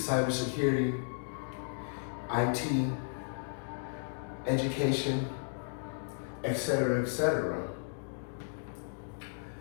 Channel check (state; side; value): silent; right; digital silence